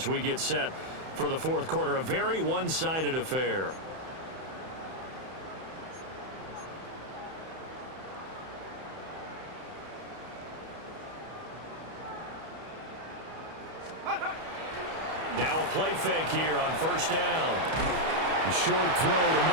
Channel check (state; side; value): late; left; 31 ms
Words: we get set for the fourth quarter. A very one-sided affair. Now a play fake here on first down. A short throw to